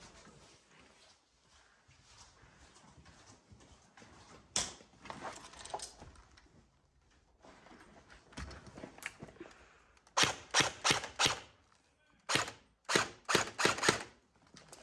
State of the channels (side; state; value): both; identical; correlation 1.00